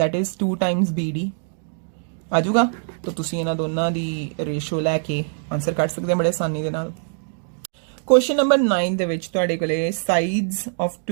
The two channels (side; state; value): left; silent; digital silence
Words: इज 2 टाइम्स BD आ जाऊगा। तो तुसीं इन्हां दोनां दी रेशियो लैके आंसर कढ सकदे बड़े आसानी दे नाल। क्वेश्चन नंबर 9 दे विच तुहाडे कोले sides of